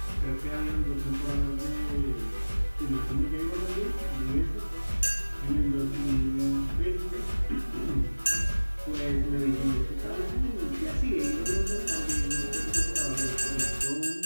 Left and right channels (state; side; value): inverted; both; correlation -1.00